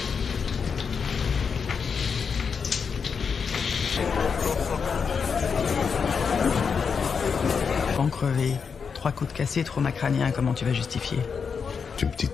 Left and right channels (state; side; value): quieter; right; 6.0 dB